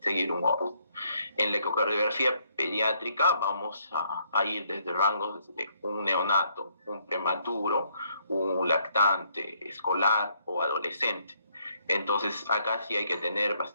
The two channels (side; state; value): both; inverted; correlation -0.69